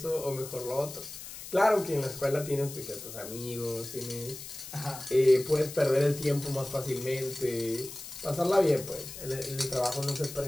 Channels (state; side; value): noise; left; hiss, 12 dB below the sound